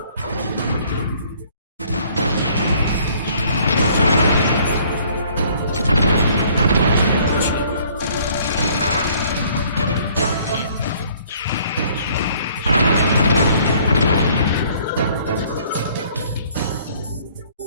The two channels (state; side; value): inverted; both; correlation -0.59